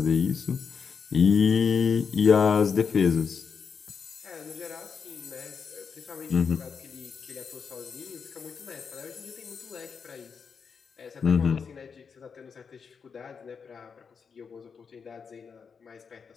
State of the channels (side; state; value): right; quieter; 6.0 dB